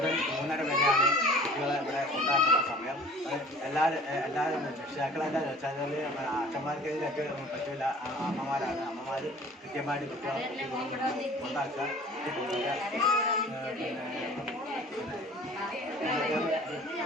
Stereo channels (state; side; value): normal; both; correlation 0.47